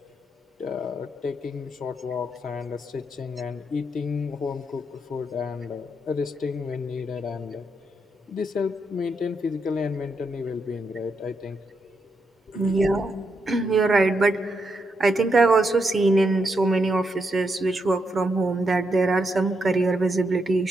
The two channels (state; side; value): normal; both; correlation 0.81